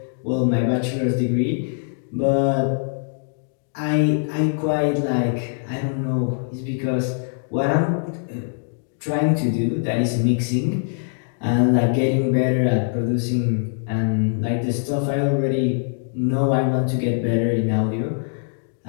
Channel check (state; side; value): silent; right; digital silence